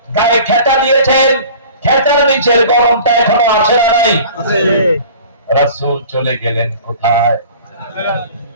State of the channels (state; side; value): inverted; both; correlation -0.44